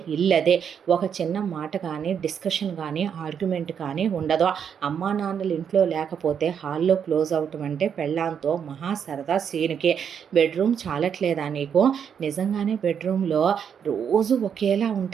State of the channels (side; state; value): left; quieter; 7.7 dB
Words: ఇల్లదే. ఒక చిన్న మాట కానీ డిస్కషన్ కానీ ఆర్గ్యుమెంట్ కానీ ఉండదు. అమ్మా నాన్నలు ఇంట్లో లేకపోతే హాల్లో క్లోజ్ అవటం అంటే పెళ్ళాంతో మహా సరదా సీన్కి. బెడ్రూమ్ చాలట్లేదా నీకు? నిజంగానే బెడ్రూమ్లో రోజు ఒకేలా